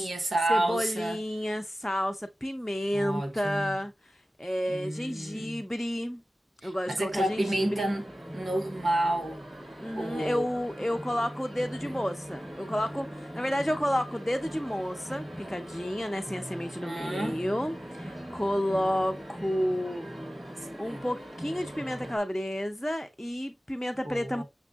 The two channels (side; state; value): both; normal; correlation 0.96